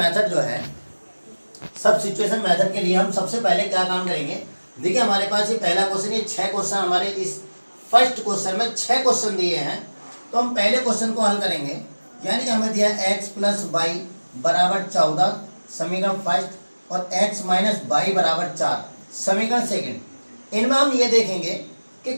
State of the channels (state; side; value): inverted; both; correlation -1.00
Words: जो है, सब सिचुएशन मेथड के लिए हम सबसे पहले क्या काम करेंगे। देखिए हमारे पास ये पहला क्वेश्चन, ये 6 क्वेश्चन हमारे इस फर्स्ट क्वेश्चन में 6 क्वेश्चन दिए हैं। तो हम पहले क्वेश्चन को हल करेंगे, यानी कि हमें दिया x + y = 14 समीकरण फर्स्ट और x - y = 4 समीकरण सेकंड। इनमें हम ये देखेंगे कि